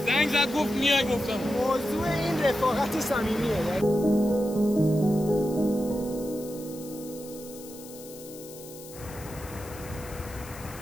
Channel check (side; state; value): left; noise; hiss, 17 dB below the sound